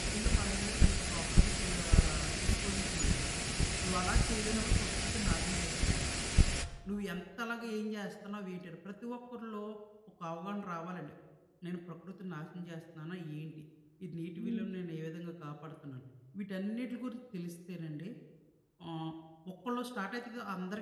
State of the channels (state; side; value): identical; both; correlation 1.00